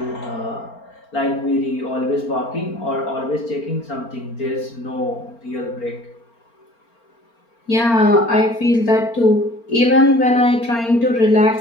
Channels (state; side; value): late; right; 4.4 ms